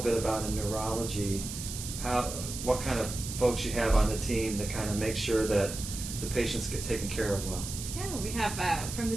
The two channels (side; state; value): right; noise; hiss, 8 dB below the sound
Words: about in neurology, what kind of folks you have on the team to kind of make sure that the patients get taken care of well? Yeah, we have, from the